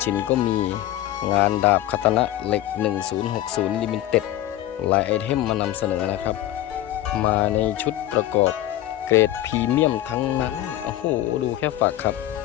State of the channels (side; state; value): right; quieter; 13.9 dB